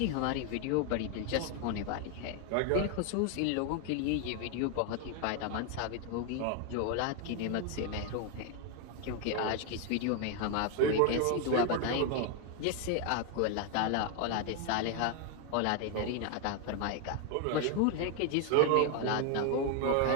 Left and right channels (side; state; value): both; different; correlation 0.01